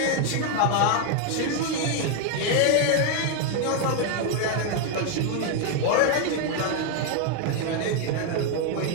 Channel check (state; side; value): different; both; correlation 0.01